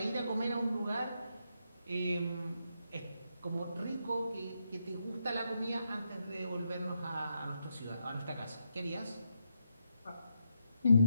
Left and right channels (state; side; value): inverted; both; correlation -0.82